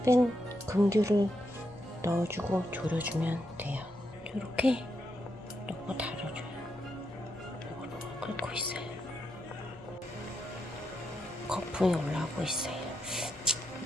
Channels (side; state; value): both; normal; correlation 0.82